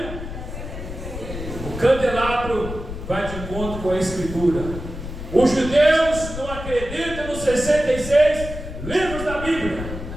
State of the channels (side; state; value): left; noise; rumble, 9 dB below the sound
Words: O candelabro vai de encontro com a Escritura. Os judeus não acreditam nos 66 livros da Bíblia,